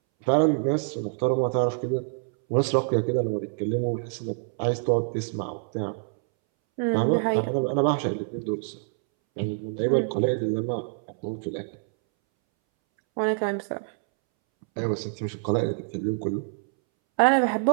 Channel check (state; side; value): silent; left; 61 dB below the other